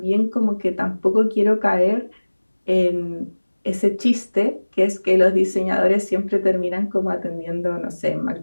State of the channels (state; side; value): inverted; both; correlation -1.00